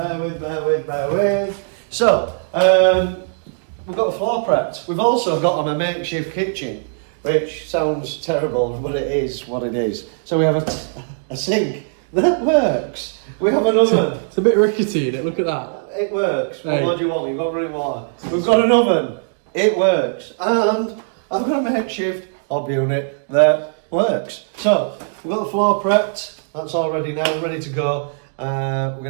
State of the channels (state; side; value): silent; left; digital silence